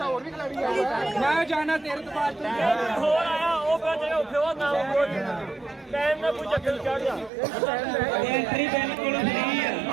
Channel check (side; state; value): left; drops out; at 7.3 s